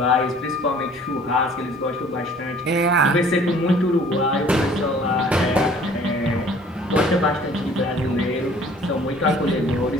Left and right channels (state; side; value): normal; both; correlation 0.53